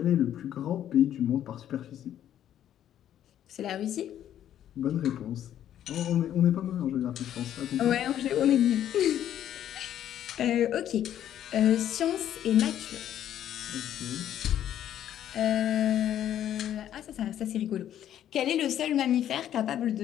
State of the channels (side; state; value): right; quieter; 10.9 dB